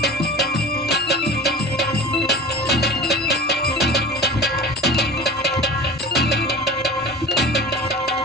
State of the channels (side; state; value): both; normal; correlation 0.36